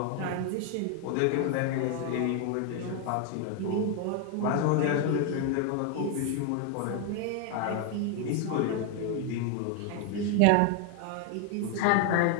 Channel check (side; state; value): both; different; correlation 0.01